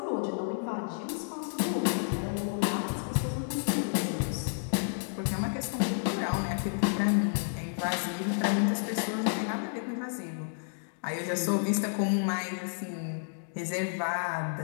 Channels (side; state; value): right; silent; digital silence